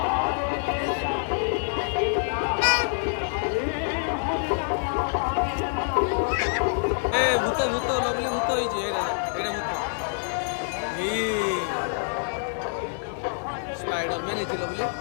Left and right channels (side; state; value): right; silent; digital silence